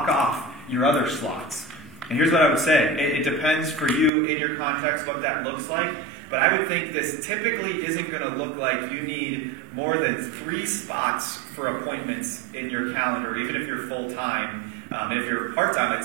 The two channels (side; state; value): left; drops out; at 4.1 s